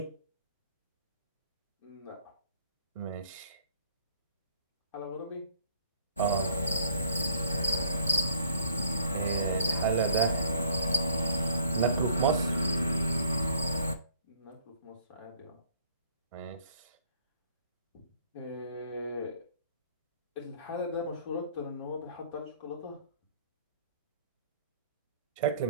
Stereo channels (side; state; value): both; inverted; correlation -0.61